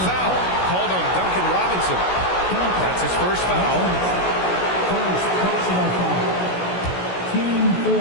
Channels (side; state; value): right; late; 16 ms